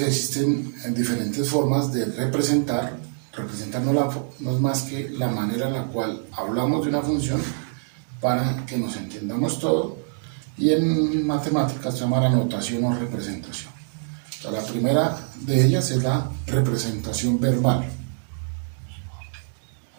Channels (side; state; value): left; silent; 62 dB below the other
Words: existen diferentes formas de representar. Representar no es más que la manera en la cual hablamos de una función para que nos entendamos todo, y en matemáticas se llama la notación o representación. O sea, la primera de ellas es la representación verbal.